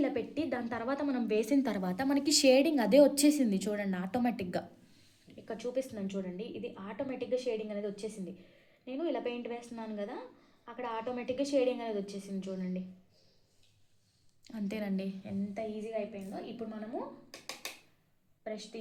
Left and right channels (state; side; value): identical; both; correlation 1.00